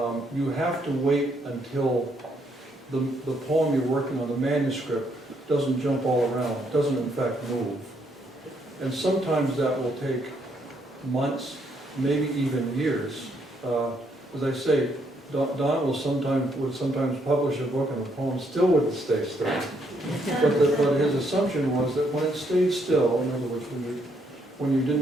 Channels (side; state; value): both; normal; correlation 0.73